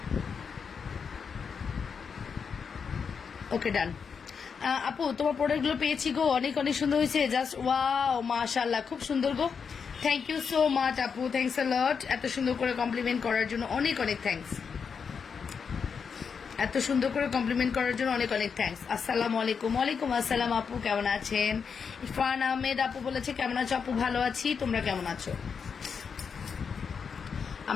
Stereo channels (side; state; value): right; quieter; 6.1 dB